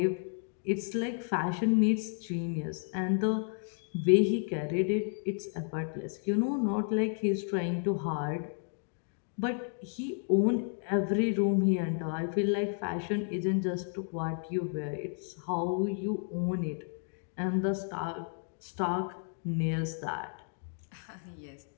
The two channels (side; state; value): right; silent; 56 dB below the other